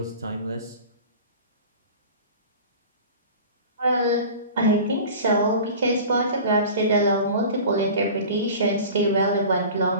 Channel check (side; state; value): both; inverted; correlation -0.38